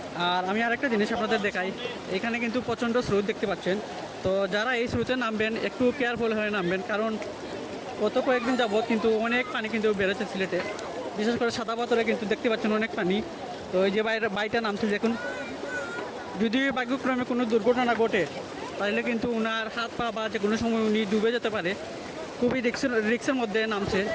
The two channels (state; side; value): identical; both; correlation 1.00